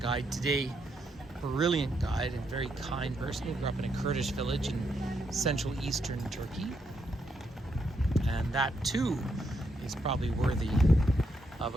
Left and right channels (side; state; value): both; normal; correlation 0.78